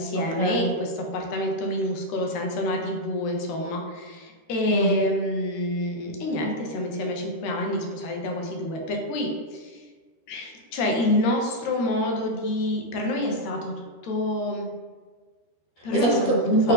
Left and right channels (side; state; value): right; late; 13 ms